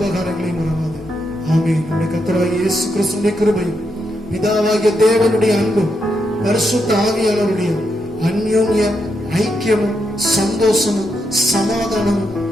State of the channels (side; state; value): both; normal; correlation 0.82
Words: மறவாது. ஆமென். நம்முடைய கர்த்தராகிய இயேசு கிறிஸ்துவின் கிருபையும், பிதாவாகிய தேவனுடைய அன்பும், பரிசுத்த ஆவியானவருடைய அந்யோன்ய ஐக்கியமும், சந்தோஷமும், சமாதானமும்